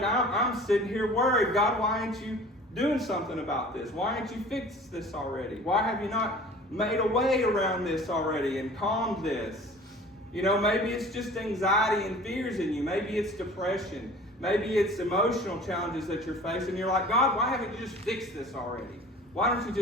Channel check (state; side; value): normal; both; correlation 0.45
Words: I'm sitting here worried. God, why aren't you doing something about this? Why aren't you fixed this already? Why have you not made a way around this already and calmed this? You know, maybe it's just anxiety and fears in you. Maybe it's depression. Maybe it's emotional challenges that you're facing. You're like, God, why haven't you just fixed this already? Why don't you